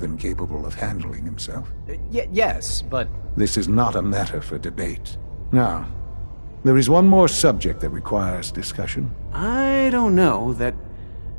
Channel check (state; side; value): inverted; both; correlation -1.00